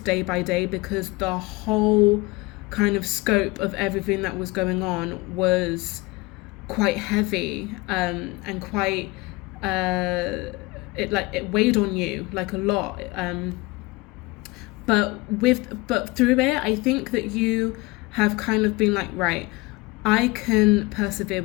by day, because the whole kind of scope of everything that was going on was quite heavy and quite it weighed on you like a lot. But through it, I think that you have kind of been like, right, I can persevere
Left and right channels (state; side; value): quieter; right; 23.2 dB